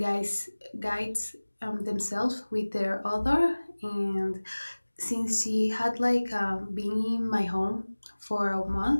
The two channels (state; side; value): inverted; both; correlation -1.00